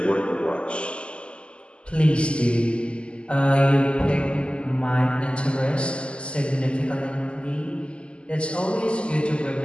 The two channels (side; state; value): right; late; 0.053 ms